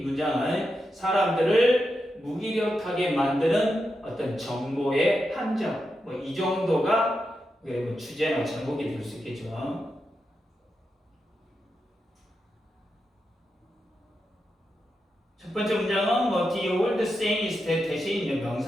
문장은 사람들을 무기력하게 만드는 어떤 정보의 함정. 이 정도가 주제나 제목이 될 수 있겠죠. 첫 번째 문장은 the old saying is that 대신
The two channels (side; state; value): both; normal; correlation 0.87